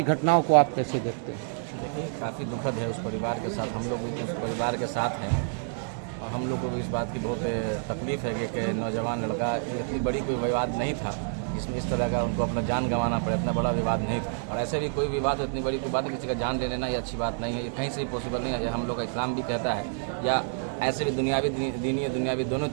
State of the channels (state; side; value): silent; left; digital silence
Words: घटनाओं को आप कैसे देखते हैं? देखिए, काफ़ी दुखद है उस परिवार के साथ। हम लोग भी तो उस परिवार के साथ हैं और हम लोग को भी इस बात की बहुत तकलीफ़ है कि एक नौजवान लड़का, जो इतनी बड़ी कोई विवाद नहीं था जिसमें इस तरह का उनको अपना जान गंवाना पड़े, इतना बड़ा विवाद नहीं था। और ऐसे भी कोई विवाद, इतनी बड़ी कोई बात है, किसी का जान ले लेना ये अच्छी बात नहीं है, ये कहीं से भी पॉसिबल नहीं है। ये हम लोग का इस्लाम भी कहता है, या ऐसे भी दुनियावी, दीनी और दुनियावी दोनों